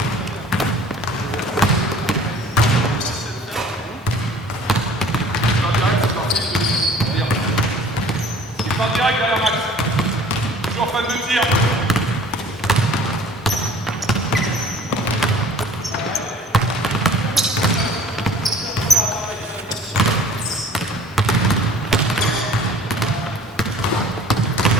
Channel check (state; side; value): normal; both; correlation 0.49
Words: Pas direct derrière Max. Toujours fan de tir.